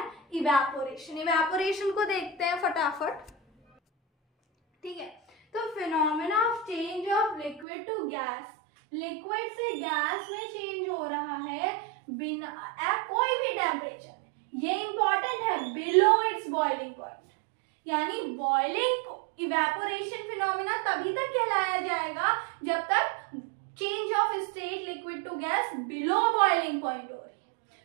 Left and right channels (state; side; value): drops out; left; at 7.7 s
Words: इवेपोरेशन को देखते हैं फटाफट। ठीक है, तो phenomena of change of liquid to gas liquid से गैस में चेंज हो रहा है बिना कोई भी टेम्परेचर में, ये इंपॉर्टेंट है, बिलो इट्स बॉइलिंग पॉइंट। यानी बॉइलिंग इवेपोरेशन फिनोमिना तभी तक कहलाया जाएगा जब तक change of state liquid to gas below boiling point हो रही है।